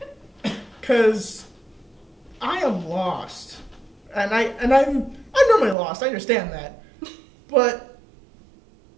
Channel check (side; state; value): left; drops out; at 5.8 s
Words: Because I am lost. And I'm normally lost, I understand that. But